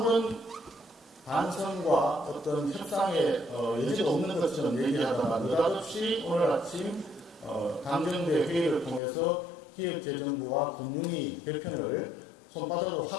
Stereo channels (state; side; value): drops out; right; at 9.0 s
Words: 반성과 어떤 협상의 여지가 없는 것처럼 얘기하다가 느닷없이 오늘 아침 당정대 회의를 통해서 기획재정부와 국무위 개편을 손바닥으로